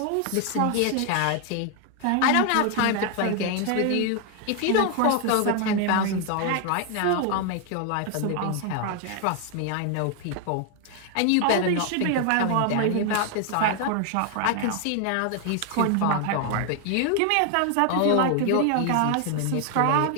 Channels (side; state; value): both; different; correlation 0.00